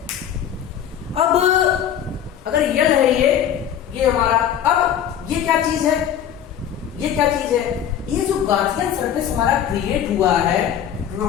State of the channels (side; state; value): right; quieter; 9.6 dB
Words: अब अगर L है ये हमारा, अब ये क्या चीज है? ये क्या चीज है? ये जो गार्सियन सरफेस हमारा क्रिएट हुआ है